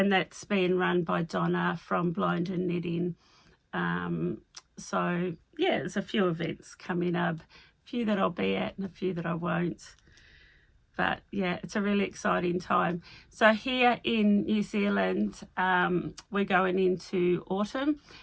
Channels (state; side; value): identical; both; correlation 1.00